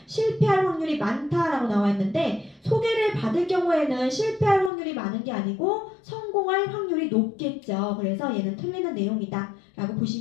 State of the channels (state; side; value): drops out; right; at 4.7 s